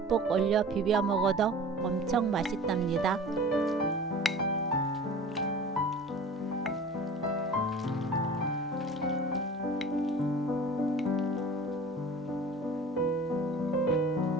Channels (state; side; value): normal; both; correlation 0.41